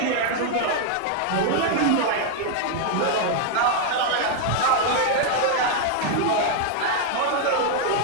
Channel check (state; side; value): different; both; correlation 0.00